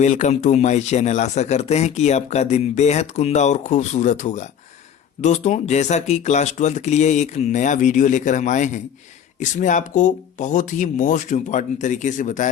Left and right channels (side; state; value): right; quieter; 8.6 dB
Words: टू माय चैनल। आशा करते हैं कि आपका दिन बेहद कुंदा और खूबसूरत होगा। दोस्तों, जैसा कि क्लास 12th के लिए एक नया वीडियो लेकर हम आए हैं, इसमें आपको बहुत ही मोस्ट इम्पॉर्टेंट तरीके से